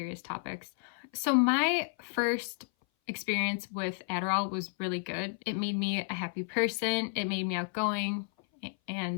topics. So my first experience with Adderall was really good. It made me a happy person. It made me outgoing,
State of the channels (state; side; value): silent; right; 56 dB below the other